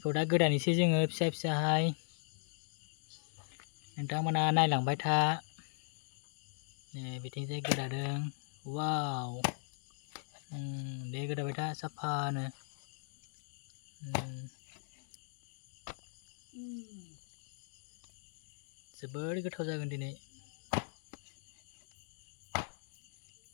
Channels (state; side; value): silent; right; digital silence